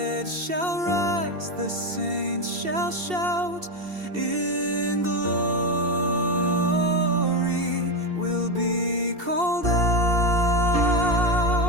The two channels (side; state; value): left; late; 2.7 ms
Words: shall rise, the saints shall shout in glory. We'll be called out.